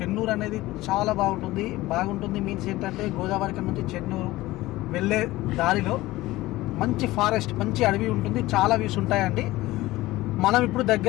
అనేది చాలా బాగుంటుంది మీన్స్ ఏంటంటే గోదావరి నుంచి చెన్నూరు వెళ్ళే దారిలో మంచి ఫారెస్ట్, మంచి అడవి ఉంటుంది. చాలా వ్యూస్ ఉంటాయండి. మనం ఇప్పుడు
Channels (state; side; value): quieter; right; 18.0 dB